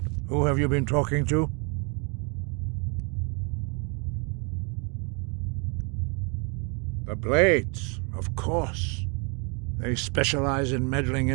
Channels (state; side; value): quieter; left; 34.6 dB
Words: Who have you been talking to? The Blades, of course. They specialize in meddling